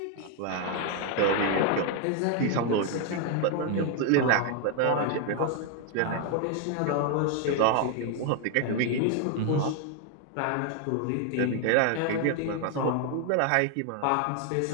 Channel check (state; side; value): different; both; correlation 0.01